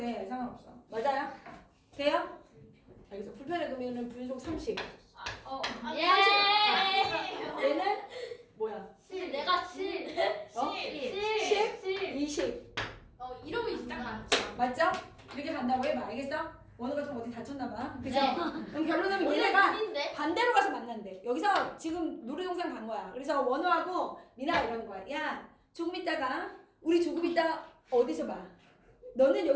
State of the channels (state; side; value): identical; both; correlation 1.00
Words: 상관없어. 맞아요? 돼요? 알겠어. 불편해 두면은 분속 30. 예. 얘는 뭐야? 7 내가 7. 어? 10? 20. 이러면 이상. 맞죠? 이렇게 간다고 해봐. 알겠어? 원우가 좀 어디 다쳤나봐. 그죠? 네. 그럼 결론은 얘네가 반대로 가서 만난대. 여기서 지금 놀이동산 간 거야. 그래서 원우하고 미나 이러는 거야. 야, 조금 있다가 우리 조금 있다 어디서 봐. 너는